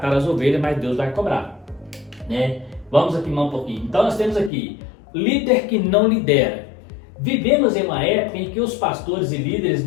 as ovelhas, mas Deus vai cobrar, né? Vamos aqui mais um pouquinho. Então nós temos aqui líder que não lidera. Vivemos em uma época em que os pastores e líderes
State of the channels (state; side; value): drops out; right; at 4.5 s